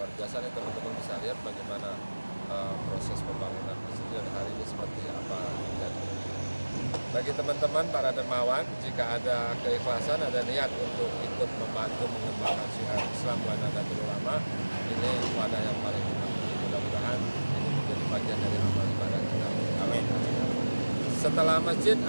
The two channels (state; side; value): inverted; both; correlation -1.00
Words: biasa nih teman-teman, bisa lihat bagaimana proses pembangunan masjid dan hari ini seperti apa. Bagi teman-teman para dermawan, jika ada keikhlasan, ada niat untuk ikut membantu mengembangkan syiar Islam wa Nahdlatul Ulama, ini wadah yang paling tepat. Mudah-mudahan ini menjadi bagian dari amal ibadah kita. Amin. Setelah masjid,